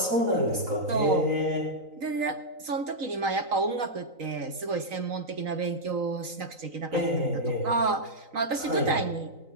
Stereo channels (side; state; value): left; late; 3.9 ms